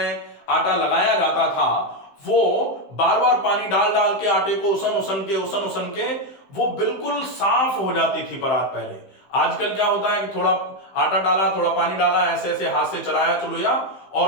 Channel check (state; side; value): late; right; 15 ms